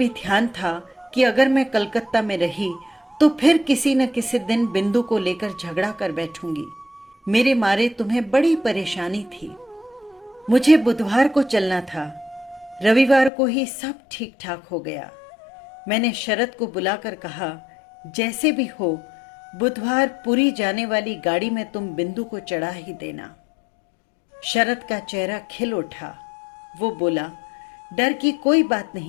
ध्यान था कि अगर मैं कलकत्ता में रही तो फिर किसी न किसी दिन बिंदु को लेकर झगड़ा कर बैठूंगी। मेरे मारे तुम्हें बड़ी परेशानी थी। मुझे बुधवार को चलना था, रविवार को ही सब ठीक ठाक हो गया। मैंने शरद को बुलाकर कहा, जैसे भी हो बुधवार पुरी जाने वाली गाड़ी में तुम बिंदु को चढ़ा ही देना। शरद का चेहरा खिल उठा। वो बोला, डर की कोई बात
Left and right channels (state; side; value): drops out; right; at 13.3 s